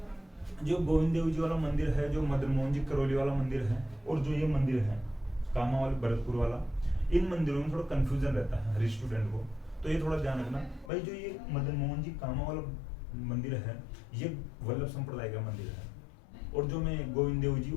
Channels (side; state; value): right; drops out; at 10.9 s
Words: जो गोविंद देव जी वाला मंदिर है, जो मदन मोहन जी करौली वाला मंदिर है, और जो ये मंदिर है कामा वाले भरतपुर वाला, इन मंदिरों में थोड़ा कंफ्यूजन रहता है हर स्टूडेंट को, तो ये थोड़ा ध्यान रखना भाई। जो ये मदन मोहन जी कामा वाला मंदिर है, ये वल्लभ संप्रदाय का मंदिर है, और जो मैं गोविंद देव जी